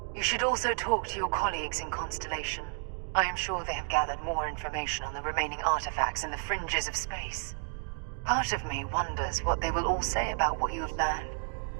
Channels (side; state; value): left; silent; 57 dB below the other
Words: You should also talk to your colleagues in Constellation. I am sure they have gathered more information on the remaining artifacts in the fringes of space. Part of me wonders what they will all say about what you have learned.